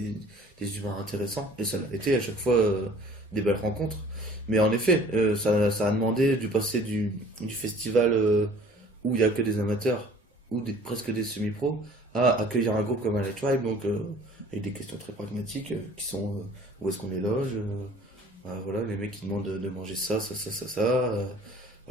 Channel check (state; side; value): normal; both; correlation 0.50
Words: humains intéressants. Et ça a été à chaque fois des belles rencontres. Mais en effet, ça a demandé du passer du festival où il n'y a que des amateurs, ou presque des semi-pros, à accueillir un groupe comme Highlight Tribe, donc avec des questions très pragmatiques qui sont où est-ce qu'on les loge, voilà, les mecs qui demandent de manger ça.